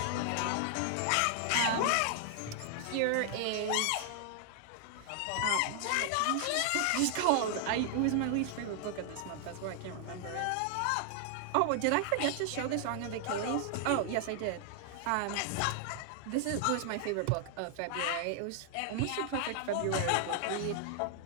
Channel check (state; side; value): different; both; correlation 0.00